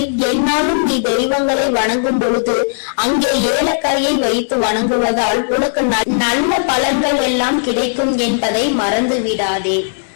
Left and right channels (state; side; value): silent; right; 69 dB below the other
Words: என்னாலும் நீ தெய்வங்களை வணங்கும் பொழுது அங்கே ஏலக்காயை வைத்து வணங்குவதால் உனக்கு நல்ல பலன்கள் எல்லாம் கிடைக்கும் என்பதை மறந்து விடாதே.